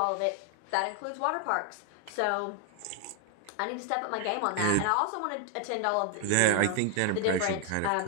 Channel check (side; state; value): both; different; correlation 0.00